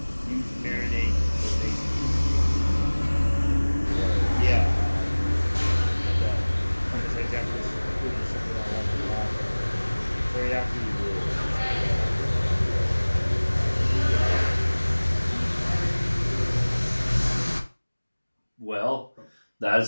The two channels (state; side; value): inverted; both; correlation -1.00